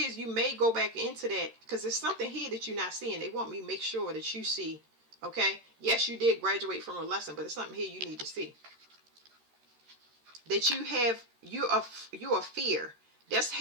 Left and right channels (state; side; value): late; left; 13 ms